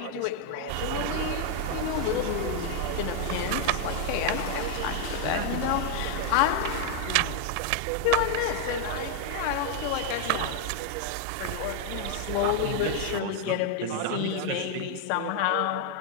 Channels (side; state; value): both; different; correlation 0.00